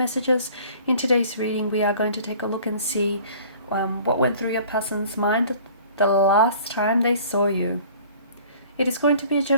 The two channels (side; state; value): both; inverted; correlation -0.50